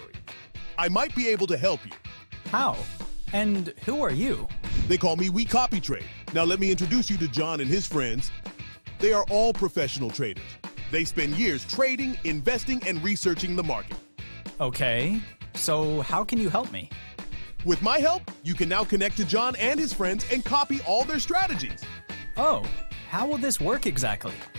I might be able to help you. How? And who are you? They call me WeCopyTrade. Now let me introduce you to John and his friends. They are all professional traders. They spend years trading, investing, and researching the market. Okay, so how can you help me? With my help, you can now connect to John and his friends and copy all their strategies. Oh, how will this work exactly?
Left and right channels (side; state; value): both; inverted; correlation -1.00